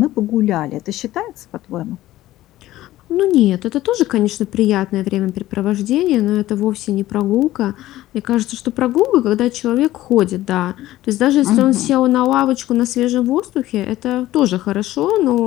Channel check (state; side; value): quieter; right; 15.3 dB